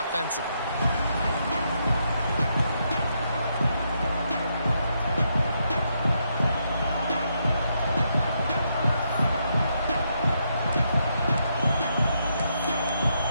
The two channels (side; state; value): both; inverted; correlation -0.79